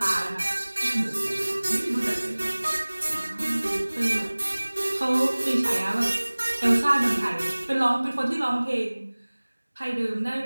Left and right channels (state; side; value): inverted; both; correlation -1.00